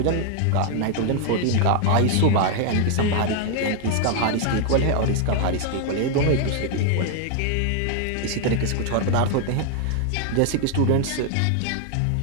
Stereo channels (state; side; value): different; both; correlation 0.00